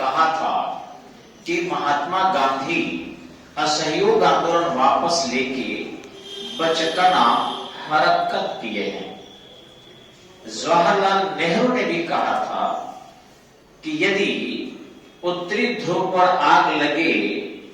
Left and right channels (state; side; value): identical; both; correlation 1.00